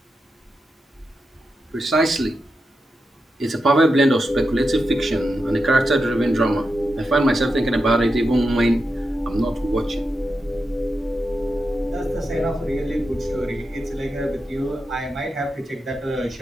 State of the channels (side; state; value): both; normal; correlation 0.88